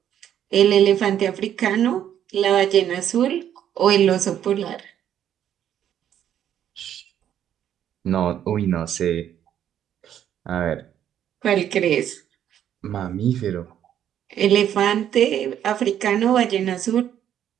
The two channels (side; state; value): left; quieter; 10.2 dB